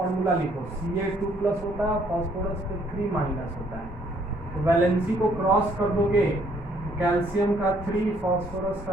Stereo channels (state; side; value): normal; both; correlation 0.65